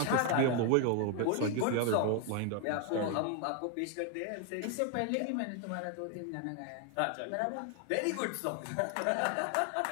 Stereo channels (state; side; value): different; both; correlation 0.01